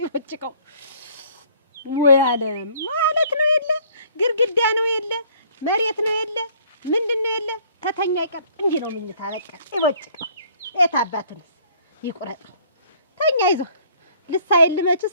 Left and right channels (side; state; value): both; inverted; correlation -0.58